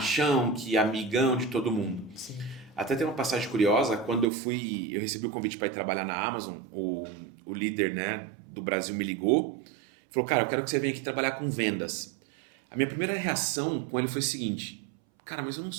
que é amigão de todo mundo. Sim. Até tem uma passagem curiosa, quando eu recebi o convite para ir trabalhar na Amazon, o líder, né, do Brasil me ligou, falou, cara, eu quero que você venha aqui trabalhar com vendas. A minha primeira reação com ele foi o seguinte, cara, mas eu não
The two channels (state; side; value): drops out; left; at 4.3 s